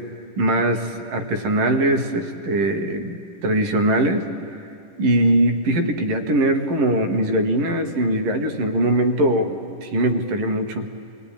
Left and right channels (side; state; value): left; late; 10 ms